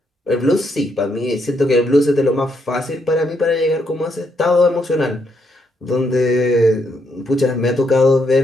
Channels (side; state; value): both; normal; correlation 0.76